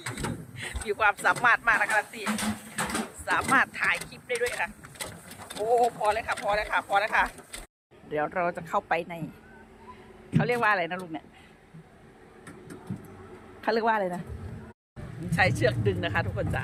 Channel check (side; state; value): both; identical; correlation 1.00